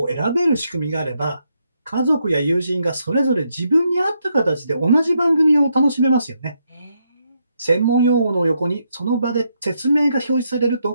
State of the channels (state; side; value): inverted; both; correlation -0.79